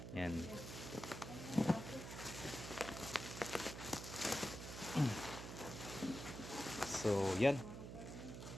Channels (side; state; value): right; noise; hum, 8 dB below the sound